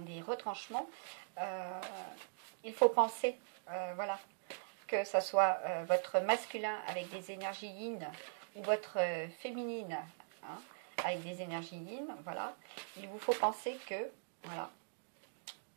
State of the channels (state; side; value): silent; left; digital silence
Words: retranchements, il faut penser, voilà, que ça soit votre masculin avec des énergies yin ou votre féminine, hein, avec des énergies yin, voilà, il vous faut penser que, voilà,